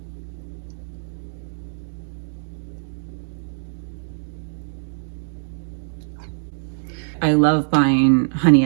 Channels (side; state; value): left; silent; digital silence